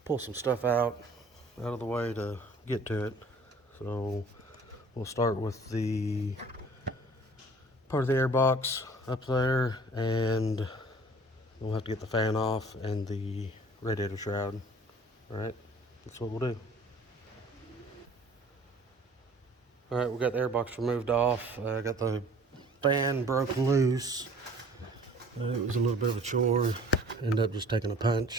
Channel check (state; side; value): normal; both; correlation 0.51